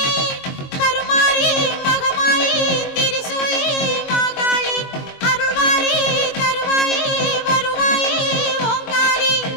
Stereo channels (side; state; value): right; late; 22 ms